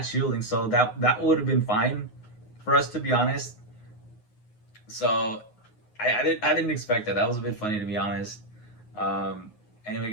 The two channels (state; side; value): late; right; 9.5 ms